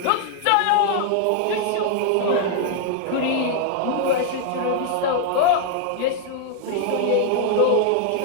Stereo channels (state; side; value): different; both; correlation 0.00